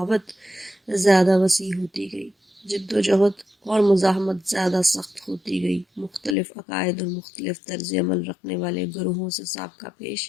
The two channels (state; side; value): drops out; right; at 6.4 s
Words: زیادہ وسیع ہوتی گئی، جد و جہد اور مزاحمت زیادہ سخت ہوتی گئی۔ مختلف عقائد اور مختلف طرز عمل رکھنے والے گروہوں سے سابقہ پیش